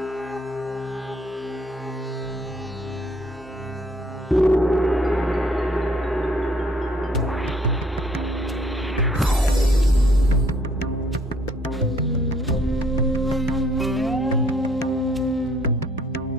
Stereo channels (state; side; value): normal; both; correlation 0.63